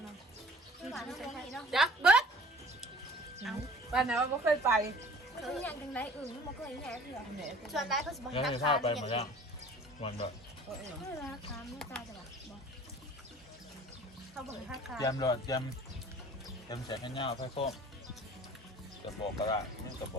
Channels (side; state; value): both; normal; correlation 0.47